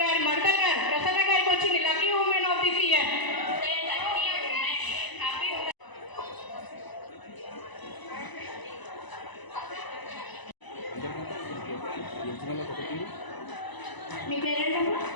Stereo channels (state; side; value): late; right; 1.0 ms